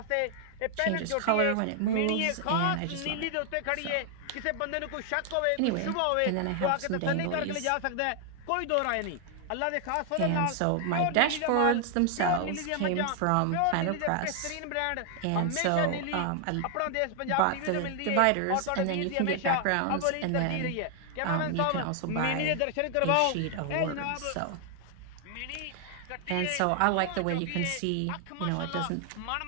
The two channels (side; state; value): both; different; correlation 0.00